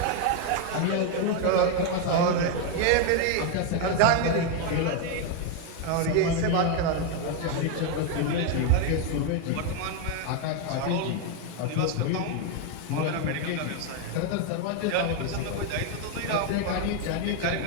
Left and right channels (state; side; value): different; both; correlation 0.01